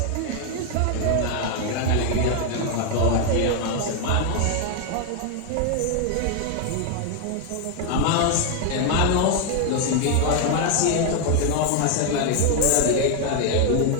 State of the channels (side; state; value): both; different; correlation 0.01